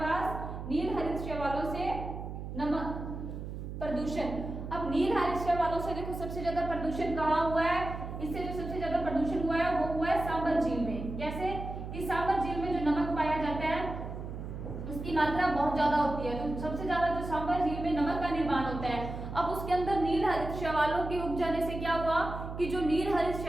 नील हरित शैवालों से नमक प्रदूषण। अब नील हरित शैवालों से देखो सबसे ज्यादा प्रदूषण कहाँ हुआ है, इससे जो सबसे ज्यादा प्रदूषण हुआ है वो हुआ है सांबर झील में। कैसे कि सांबर झील में जो नमक पाया जाता है उसकी मात्रा बहुत ज्यादा होती है, तो सबसे ज्यादा जो सांबर झील में नमक का निर्माण होता है। अब उसके अंदर नील हरित शैवालों के उग जाने से क्या हुआ कि जो नील हरित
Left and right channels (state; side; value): noise; right; hum, 8 dB below the sound